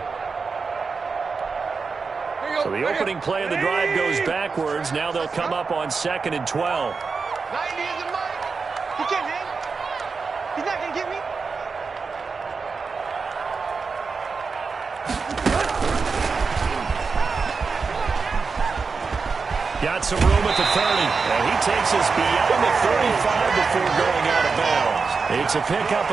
So the opening play of the drive goes backwards. Now they'll come up on 2nd and 12. 90 is the mic. He can't hang. He's not going to get me. Got some room at the 30. And he takes us beyond the 35 before going out of bounds. It's a pickup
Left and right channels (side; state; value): left; quieter; 4.8 dB